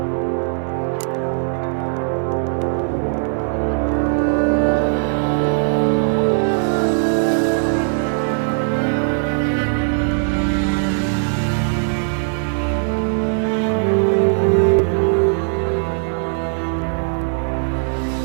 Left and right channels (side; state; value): left; silent; digital silence